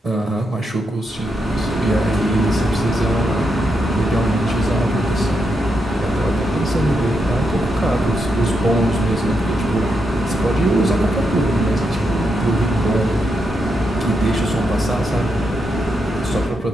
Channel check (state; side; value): normal; both; correlation 0.83